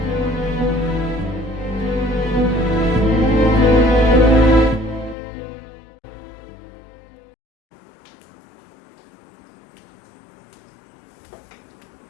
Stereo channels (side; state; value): right; drops out; at 5.2 s